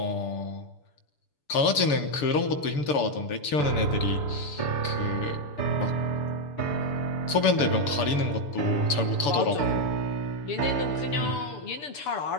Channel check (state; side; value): late; right; 6.9 ms